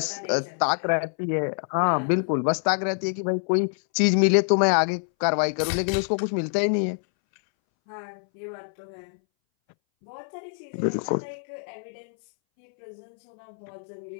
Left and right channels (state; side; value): silent; right; 61 dB below the other